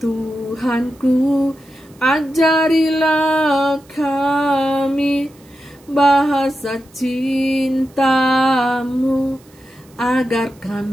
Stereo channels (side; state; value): right; noise; hiss, 29 dB below the sound